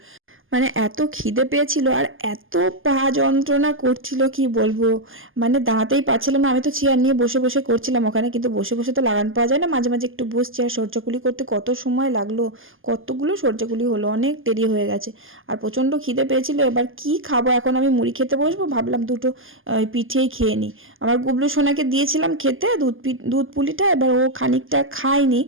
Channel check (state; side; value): late; left; 0.59 ms